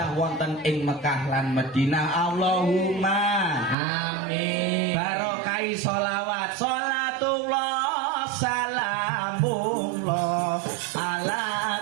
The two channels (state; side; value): drops out; left; at 3.8 s